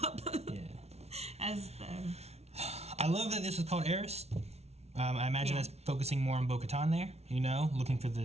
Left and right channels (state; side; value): late; left; 0.31 ms